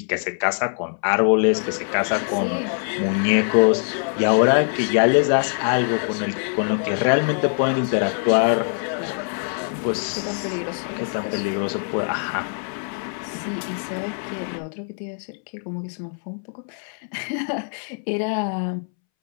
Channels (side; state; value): right; silent; 63 dB below the other